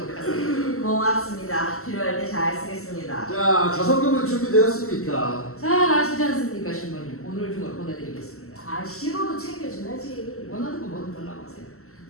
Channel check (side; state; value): right; late; 0.63 ms